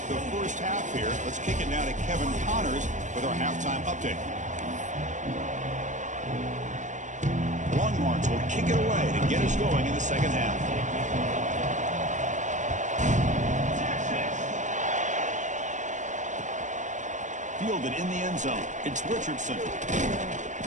the first half here. Let's kick it now to Kevin Connors with our halftime update. Longhorns will kick it away to get us going in the second half. Fielded in the end zone. It's Richardson.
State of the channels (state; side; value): late; left; 0.35 ms